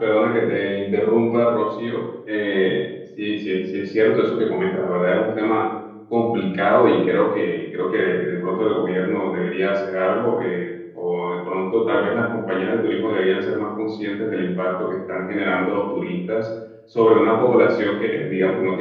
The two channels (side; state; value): both; identical; correlation 1.00